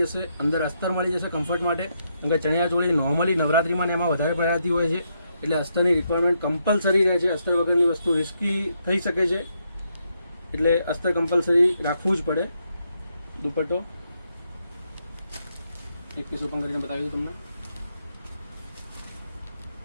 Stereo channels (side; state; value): both; inverted; correlation -0.78